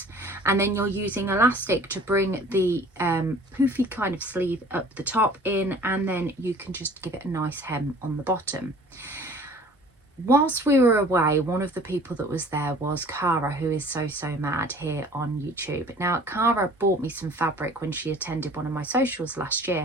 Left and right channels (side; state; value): both; normal; correlation 0.49